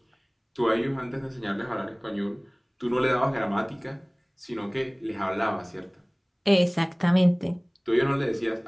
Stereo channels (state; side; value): identical; both; correlation 1.00